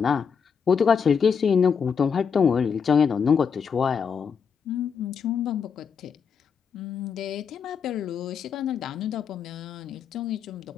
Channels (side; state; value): right; quieter; 6.5 dB